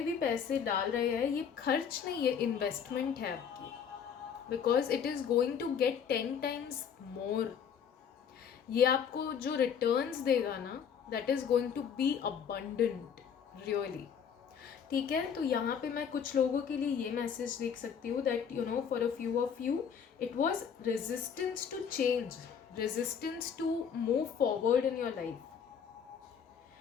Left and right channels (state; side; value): quieter; right; 7.4 dB